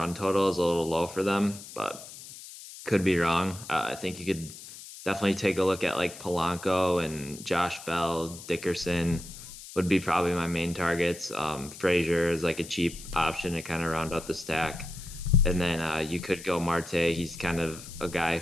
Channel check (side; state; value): left; noise; hiss, 14 dB below the sound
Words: total is a little low for them, but could be wrong. I think you could definitely take a look at like Polanco and Josh Bell, Dickerson would be probably my main targets. Frazier is like a cheap option to kind of round out the stack. And then you could go Marte. He's kind of a guy